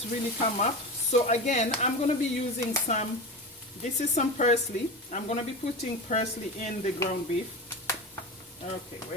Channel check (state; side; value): normal; both; correlation 0.25